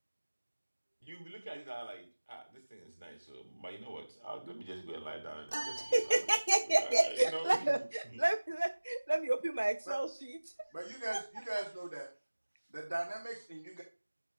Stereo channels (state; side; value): inverted; both; correlation -1.00